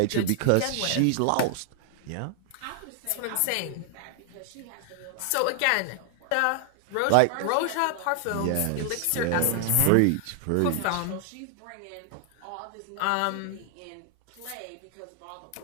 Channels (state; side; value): different; both; correlation 0.00